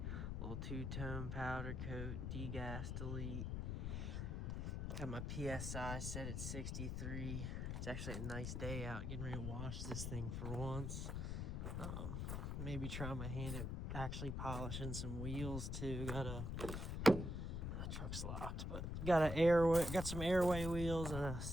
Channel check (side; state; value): left; noise; rumble, 2 dB below the sound